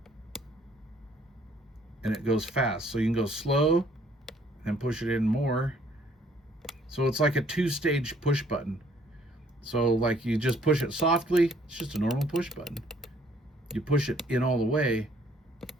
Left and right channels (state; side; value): normal; both; correlation 0.63